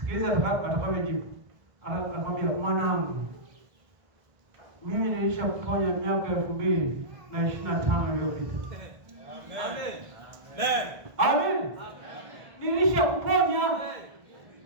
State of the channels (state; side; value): late; left; 1.6 ms